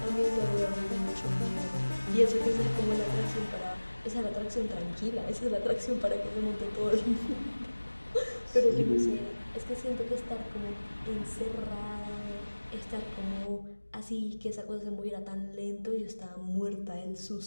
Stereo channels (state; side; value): inverted; both; correlation -1.00